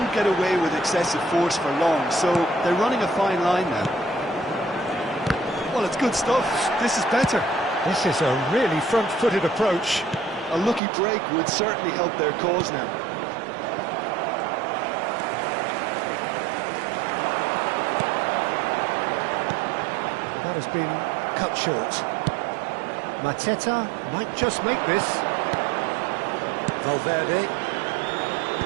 get away with excessive force for long, so they're running a fine line now. Well, it's good stuff. This is better. This is a really front-footed approach. A lucky break would certainly help their cause now. That has been cut short. Mateta might just make this. Valverde.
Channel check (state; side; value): drops out; left; at 10.8 s